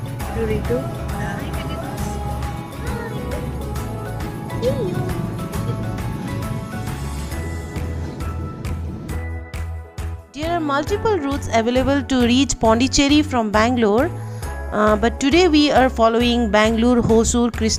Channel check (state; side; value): identical; both; correlation 1.00